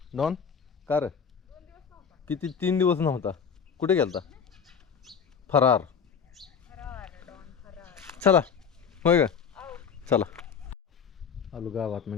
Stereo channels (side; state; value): right; quieter; 6.8 dB